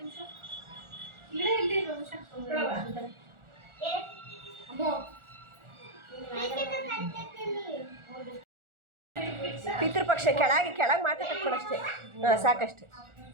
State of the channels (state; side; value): late; left; 1.4 ms